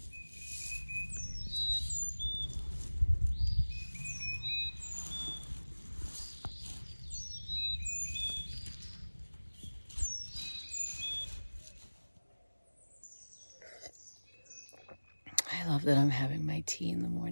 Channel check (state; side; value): inverted; both; correlation -1.00